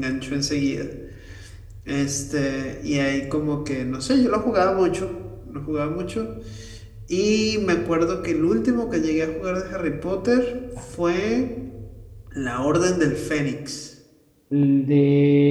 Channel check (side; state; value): both; identical; correlation 1.00